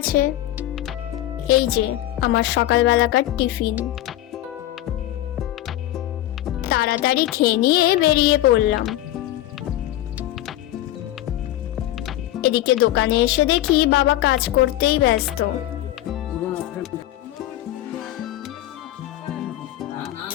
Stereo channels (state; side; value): quieter; right; 14.3 dB